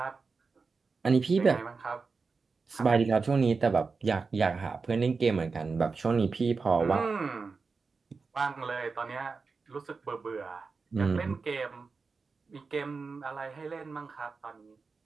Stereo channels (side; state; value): left; quieter; 4.6 dB